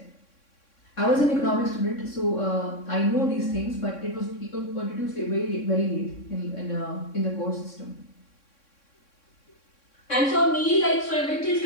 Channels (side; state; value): right; late; 3.6 ms